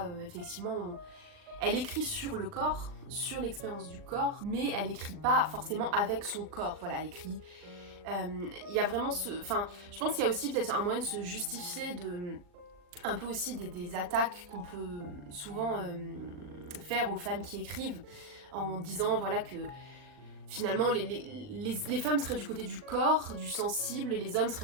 effectivement. Elle écrit sur le corps, sur l'expérience du corps, mais elle écrit pas forcément avec son corps. Voilà, elle écrit. Il y a vraiment je pense qu'il y a aussi peut-être un moyen de se justifier un peu aussi des attaques qu'on peut souvent faire aux femmes qui écrivent en disant voilà que finalement les femmes seraient du côté du corps, du sensible, et les hommes seraient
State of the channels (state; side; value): late; left; 39 ms